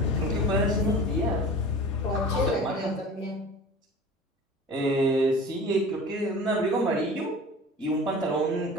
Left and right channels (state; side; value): normal; both; correlation 0.39